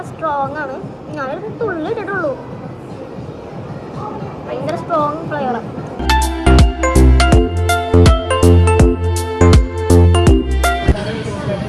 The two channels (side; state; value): both; identical; correlation 1.00